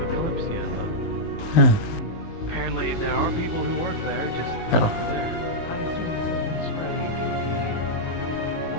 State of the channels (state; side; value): late; right; 18 ms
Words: Kalypsia. Hmm. Apparently, there are people who work there, just Oh. not there.